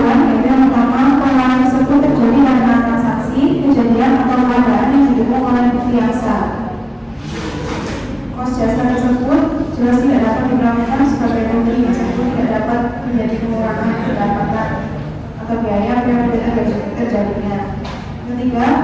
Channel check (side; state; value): both; identical; correlation 1.00